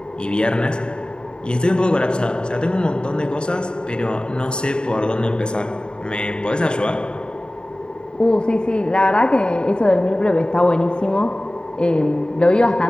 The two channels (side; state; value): right; late; 0.049 ms